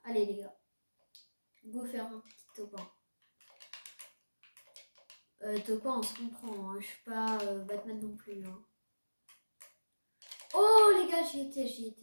Allez les gars. Go faire un petit topin. Topin on se comprend. Hein. Je suis pas Batman non plus. Hein. Oh les gars j'y étais.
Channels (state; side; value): inverted; both; correlation -1.00